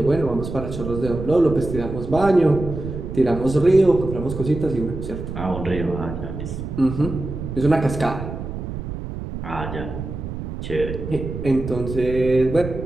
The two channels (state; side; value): noise; right; rumble, 7 dB below the sound